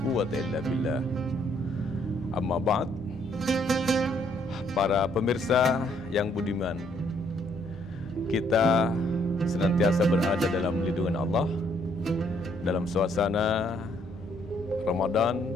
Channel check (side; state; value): both; normal; correlation 0.68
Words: quwata illa billah. Amma ba'd. Para pemirsa yang budiman, kita senantiasa berada dalam lindungan Allah dalam suasana Ramadan